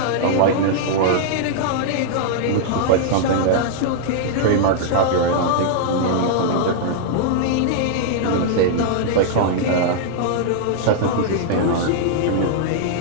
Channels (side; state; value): both; different; correlation -0.01